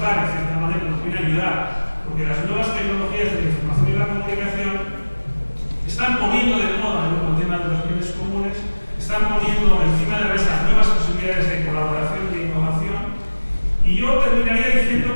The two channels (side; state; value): both; inverted; correlation -1.00